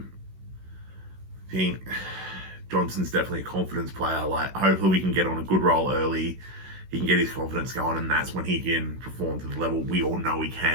think Johnson's definitely a confidence player. Like, hopefully we can get on a good roll early. He can get his confidence going, and that's when he can perform to the level we all know he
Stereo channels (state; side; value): late; left; 16 ms